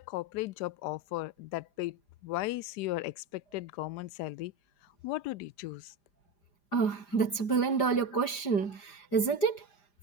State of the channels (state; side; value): late; right; 5.0 ms